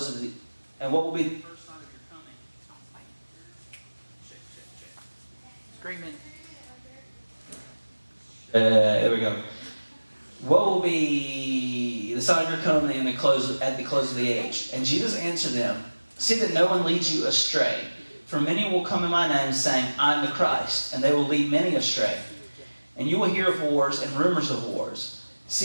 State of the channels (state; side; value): inverted; both; correlation -1.00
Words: of the... And what will be the first sign of your coming?" Screaming. There we go. "What will be the sign of your coming and at the close of the age?" And Jesus answered them, "See that no one leads you astray. For many will come in my name, saying, 'I am the Christ,' and they will lead many astray. And you will hear of wars and rumors of wars.